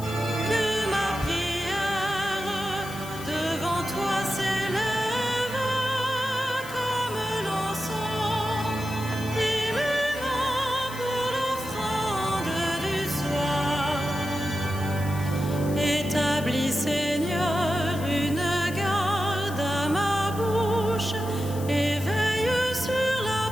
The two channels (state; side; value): noise; left; hiss, 15 dB below the sound